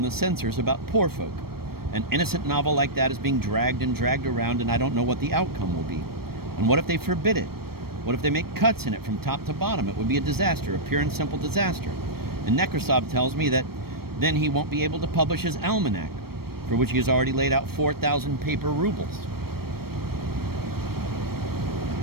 censors about Poor Folk. An innocent novel like that is being dragged and dragged around, and I don't know what the outcome will be. And what if they forbid it? What if they make cuts in it from top to bottom? It would be a disaster, a pure and simple disaster. And Nekrasov tells me that then he won't be able to publish his almanac, for which he has already laid out 4,000 paper rubles.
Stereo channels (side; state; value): left; late; 0.94 ms